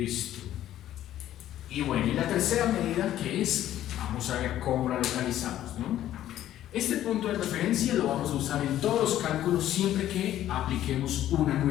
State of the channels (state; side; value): quieter; right; 12.5 dB